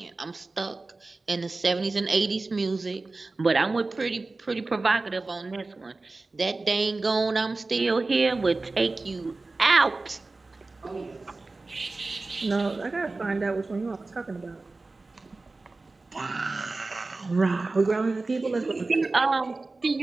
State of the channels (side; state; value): left; quieter; 3.4 dB